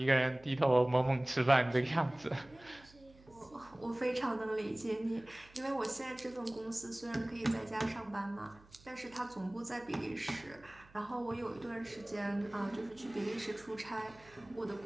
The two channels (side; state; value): right; noise; hum, 25 dB below the sound